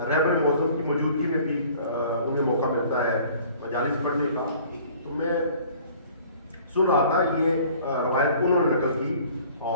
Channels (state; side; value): inverted; both; correlation -0.51